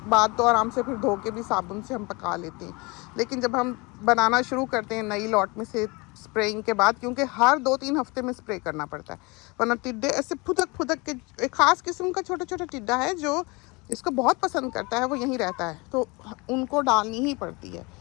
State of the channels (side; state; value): right; quieter; 26.7 dB